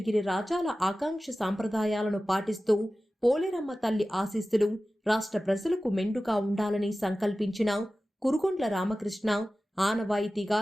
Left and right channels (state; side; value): normal; both; correlation 0.96